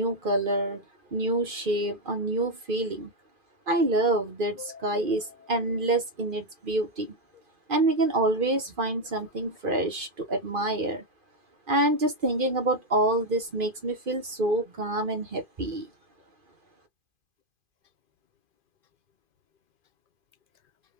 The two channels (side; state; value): left; late; 2.5 ms